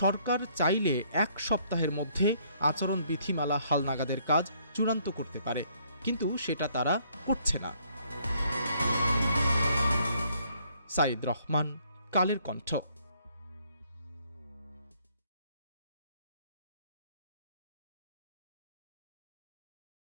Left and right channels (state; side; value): inverted; both; correlation -0.66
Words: সরকার চাইলে 1 সপ্তাহের মধ্যে আচরণ বিধিমালা হালনাগাদের কাজ চূড়ান্ত করতে পারে, কিন্তু সেটা তারা করছে না। সাইদ রহমান, কালের কণ্ঠ।